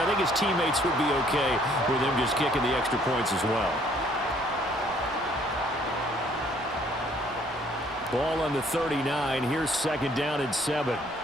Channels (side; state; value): both; normal; correlation 0.62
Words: I think his teammates would be okay with him just kicking the extra points as well. Ball on the 39. Here's 2nd down and 7.